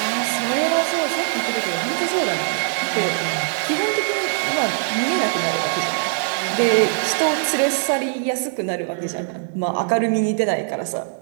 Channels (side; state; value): left; silent; 65 dB below the other